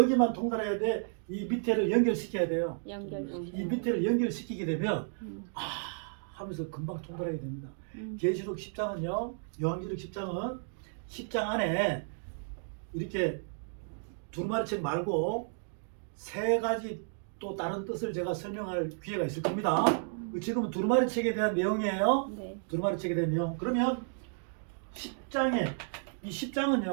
통달해야 돼. 이 밑에를 연결시켜야 돼요. 이 밑에를 연결시키게 되면 하면서 금방 통달하게 됩니다. 계시록 10장은요. 요한계시록 10장은 10장 안에 이렇게 두루마리책 말고 세 가지 또 다른 뜻을 제가 설명할 기회가 있을 겁니다. 지금은 두루마리책에 대한 내용이에요. 네. 두루마리책에 대한 내용. 그러면 10장에 이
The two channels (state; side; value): silent; left; digital silence